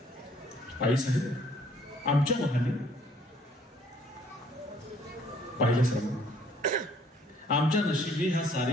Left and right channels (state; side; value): normal; both; correlation 0.61